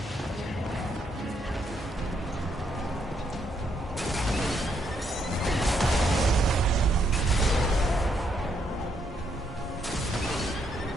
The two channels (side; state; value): both; normal; correlation 0.75